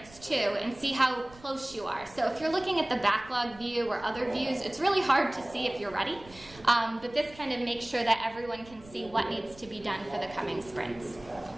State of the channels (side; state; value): right; noise; rumble, 22 dB below the sound